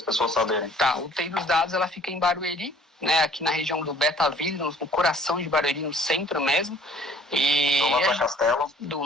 pessoas saberem. Tá, o TI dos dados ela fica em Barueri, né, aqui na região do Betaville, no coração de Barueri, no centro mesmo. E do lado da Castelo? Do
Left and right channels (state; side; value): normal; both; correlation 0.55